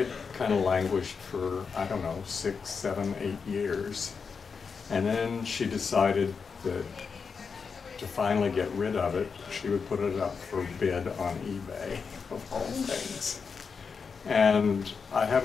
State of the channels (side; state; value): right; quieter; 5.5 dB